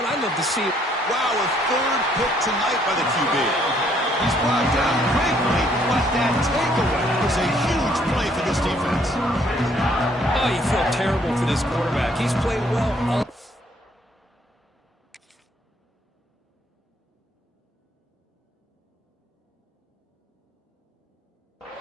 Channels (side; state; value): both; normal; correlation 0.66